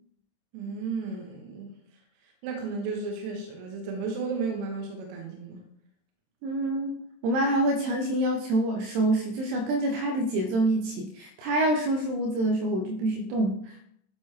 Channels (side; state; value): left; late; 27 ms